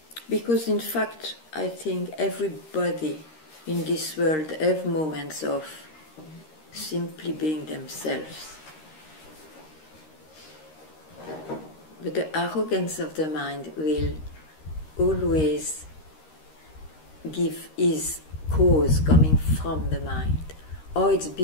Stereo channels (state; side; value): late; right; 13 ms